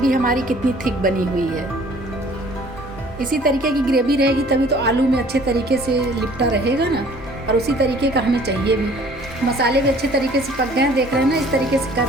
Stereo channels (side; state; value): both; normal; correlation 0.54